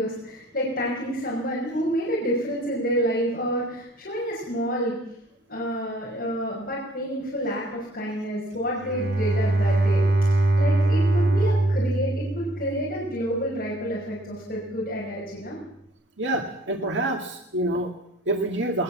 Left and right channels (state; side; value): normal; both; correlation 0.56